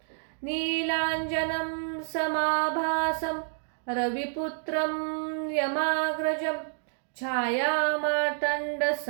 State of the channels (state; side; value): silent; left; digital silence